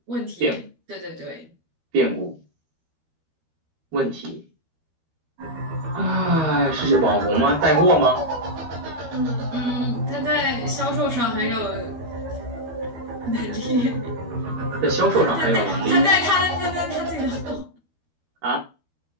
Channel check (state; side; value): late; left; 13 ms